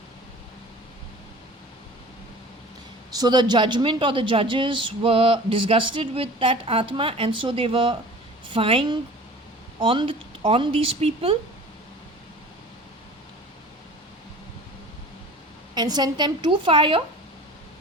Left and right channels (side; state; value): both; normal; correlation 0.42